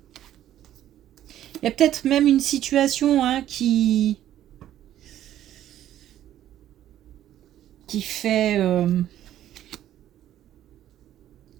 Il y a peut-être même une situation qui fait...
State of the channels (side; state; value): left; quieter; 12.0 dB